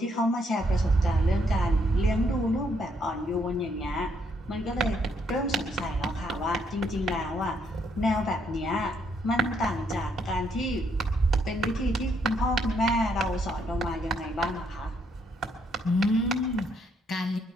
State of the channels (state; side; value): normal; both; correlation 0.72